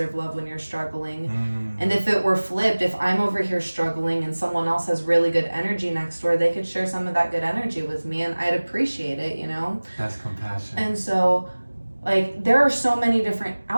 love when you're struggling. And if it were flipped, if I'm over here struggling and someone else has really good energy next door, they could share some of that good energy with me and I'd appreciate it, you know? That's compassion. And so like there are so many different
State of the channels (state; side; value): inverted; both; correlation -1.00